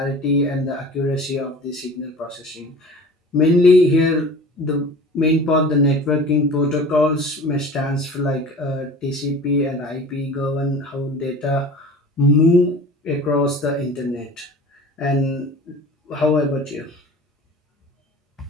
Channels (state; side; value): normal; both; correlation 0.40